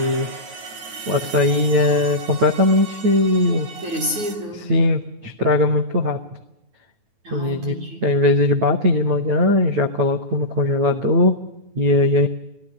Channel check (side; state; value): left; late; 9.4 ms